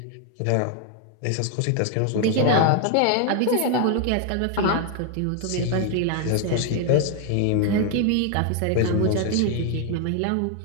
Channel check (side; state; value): both; different; correlation 0.00